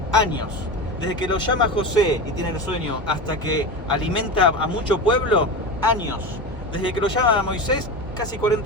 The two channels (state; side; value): normal; both; correlation 0.24